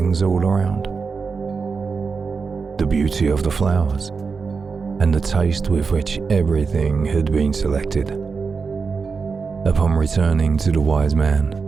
all around, the beauty of the flowers, and the taste with which everything had been selected. Upon returning to the wise man,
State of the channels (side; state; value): left; quieter; 5.0 dB